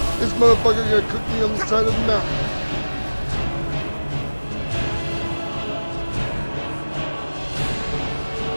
This motherfucker gonna cook me on the side of the mountain.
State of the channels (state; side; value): inverted; both; correlation -1.00